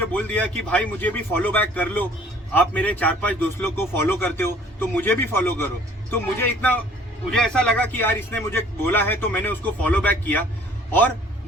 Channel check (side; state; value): both; normal; correlation 0.54